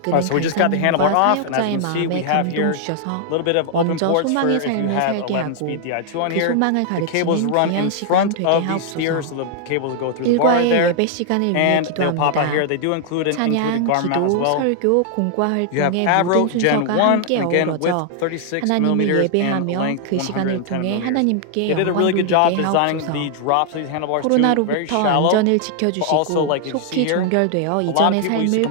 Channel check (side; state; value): both; different; correlation 0.00